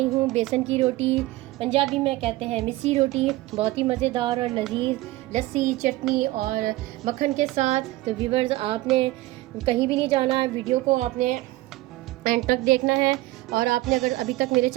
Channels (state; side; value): quieter; left; 18.3 dB